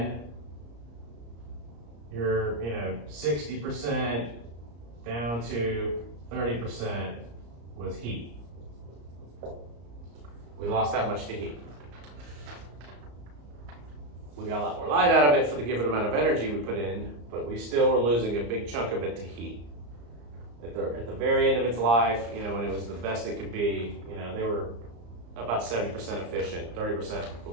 you're 60% down to 30% was heat. We lost that much to heat. We got a lot more light out of it for the given amount of energy we put in, but we still were losing a big chunk of it to heat. At the very end of its life, when it was the best it could be, they were about 70% efficient, 30%, but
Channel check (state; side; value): late; left; 34 ms